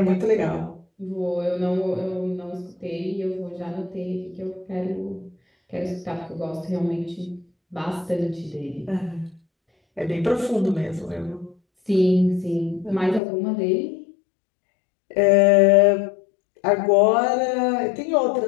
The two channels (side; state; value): right; drops out; at 13.2 s